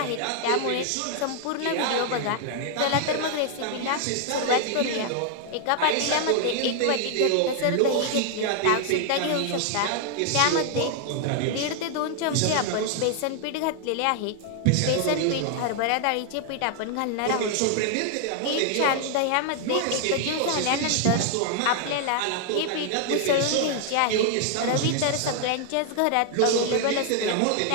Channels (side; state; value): both; different; correlation 0.00